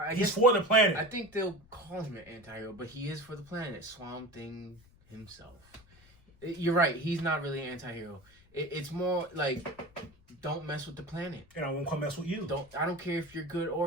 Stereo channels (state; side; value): noise; left; rumble, 27 dB below the sound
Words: he's guess, for the planet. I think they'll call him an anti-hero, but he is for the planet. Swamp Thing himself. You're right. He's not really an anti-hero. It's more like, don't mess with the planet. And I won't come mess with you. I don't care if you're good